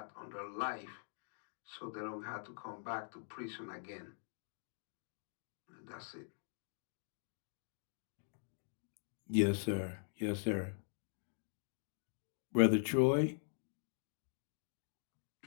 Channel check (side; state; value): right; silent; digital silence